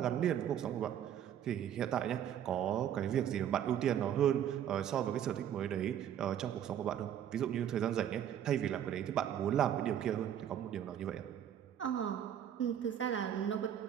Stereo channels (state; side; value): quieter; left; 10.0 dB